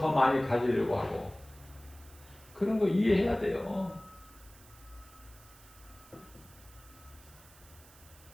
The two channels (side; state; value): right; noise; hiss, 23 dB below the sound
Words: 많이 가지려고 하고 그런 거 이해해야 돼요.